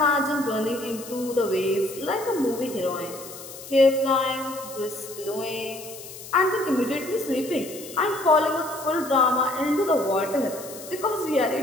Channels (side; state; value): left; noise; hiss, 14 dB below the sound